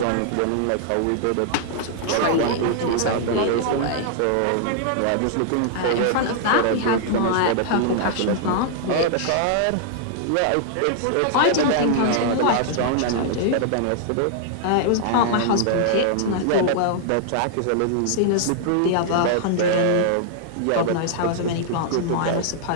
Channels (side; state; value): both; different; correlation -0.01